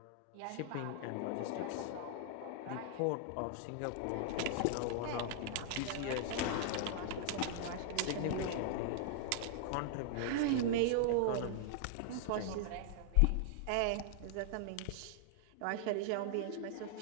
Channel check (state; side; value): different; both; correlation -0.01